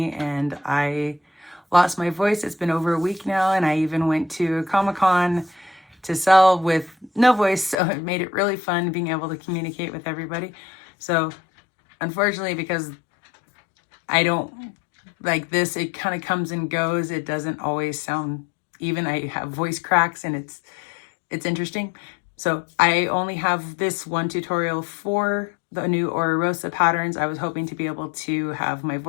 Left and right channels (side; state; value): right; drops out; at 7.8 s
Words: and I lost my voice. It's been over a week now, and I even went to a Comic-Con to sell with no voice, so it made it really fun being able to communicate with everybody. So unfortunately, because I don't like this, it kind of comes and goes. It doesn't always sound even. I have voice cracks, and it's interesting. So I only have this one tutorial for the new Rosa patterns. I was hoping to be able to have my